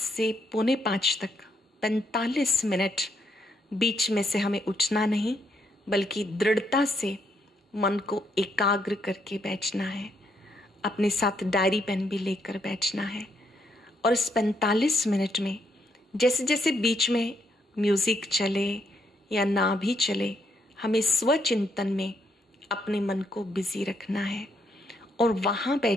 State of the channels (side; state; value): both; normal; correlation 0.75